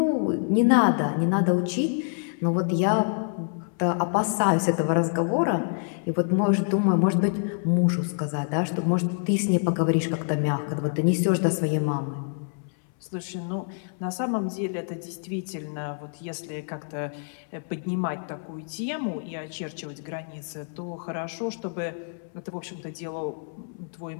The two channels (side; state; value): right; silent; 60 dB below the other